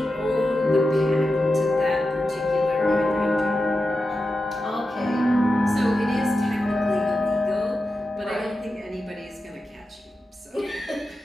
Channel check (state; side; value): normal; both; correlation 0.91